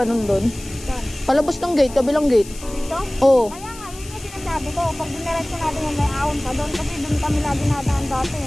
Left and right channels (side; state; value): left; noise; hiss, 17 dB below the sound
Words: doon. Saan? Palabas ng gate, kabilang gate. Dito? Oo. Kaya nga, yun yung sinasabi ko. Pag diniretso natin yan, may ahon pa doon. Kasi doon kami lagi nadaan dati.